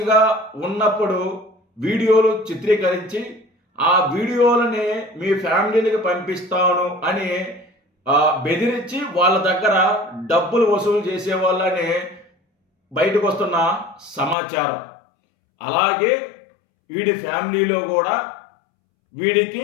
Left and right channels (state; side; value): drops out; right; at 14.4 s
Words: ఉన్నప్పుడు వీడియోలు చిత్రీకరించి ఆ వీడియోలని మీ ఫ్యామిలీలకు పంపిస్తాను అని బెదిరించి వాళ్ళ దగ్గర డబ్బులు వసూలు చేసే వాళ్ళని బయటకు వస్తున్న సమాచారం. అలాగే వీడి ఫ్యామిలీలో కూడా వీడికి